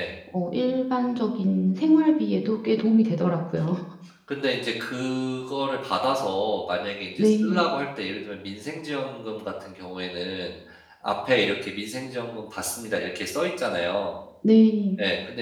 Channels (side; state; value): both; identical; correlation 1.00